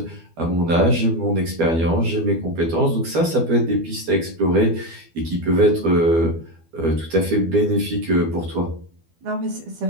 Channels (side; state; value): left; late; 12 ms